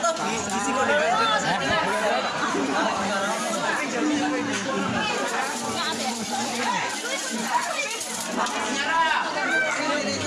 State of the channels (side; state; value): both; identical; correlation 1.00